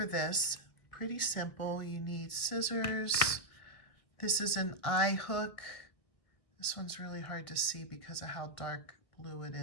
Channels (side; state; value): right; late; 1.9 ms